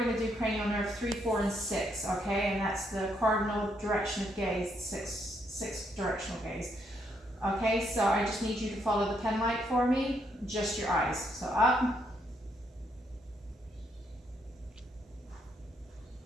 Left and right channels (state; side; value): normal; both; correlation 0.74